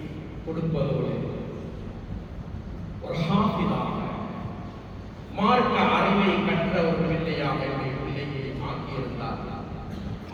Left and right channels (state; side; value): identical; both; correlation 1.00